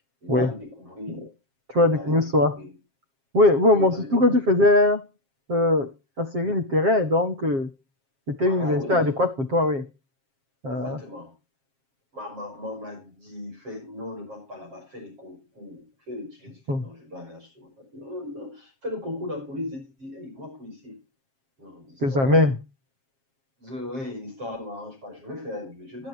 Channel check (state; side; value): late; left; 7.4 ms